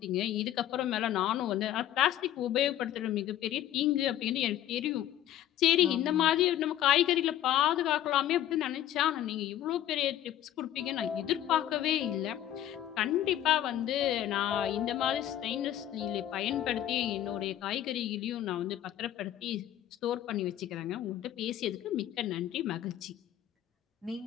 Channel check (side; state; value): right; quieter; 12.1 dB